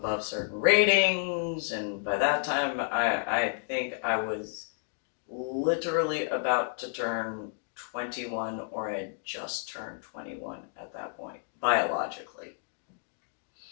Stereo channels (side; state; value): right; silent; digital silence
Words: certain ratings, and by that time I think I was literally about to turn 21, or I had just turned 21 at that point, biologically.